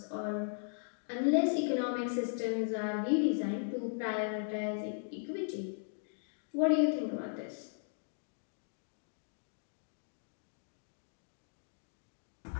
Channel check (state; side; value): silent; right; digital silence